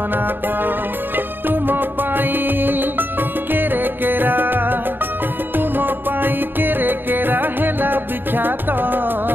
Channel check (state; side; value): late; left; 0.095 ms